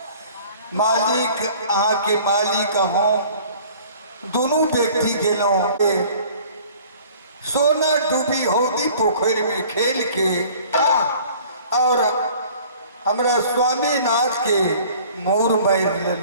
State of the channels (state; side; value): inverted; both; correlation -0.50